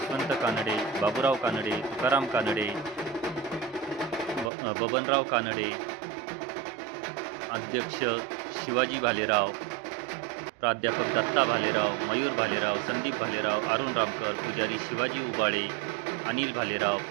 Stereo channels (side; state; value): left; drops out; at 4.5 s